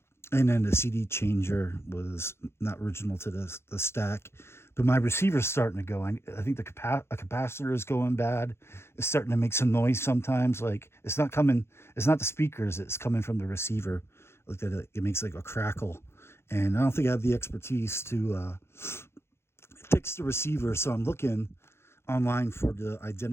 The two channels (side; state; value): right; late; 0.12 ms